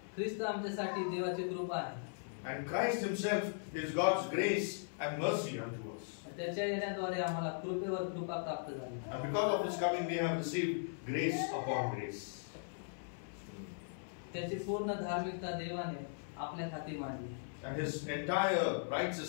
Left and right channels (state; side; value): silent; right; 52 dB below the other